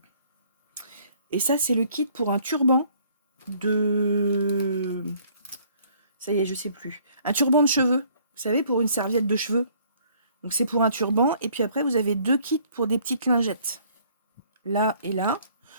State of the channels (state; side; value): inverted; both; correlation -0.60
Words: Et ça, c'est le kit pour un turban de... Ça y est, je sais plus. Un turban de cheveux. Vous savez, pour une serviette de cheveux. Donc c'est pour un turban. Et puis après, vous avez deux kits pour des petites lingettes. Là et là.